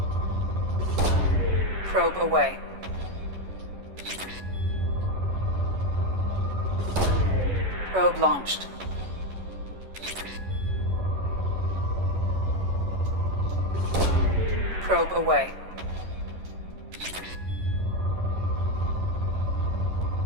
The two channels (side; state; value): left; late; 11 ms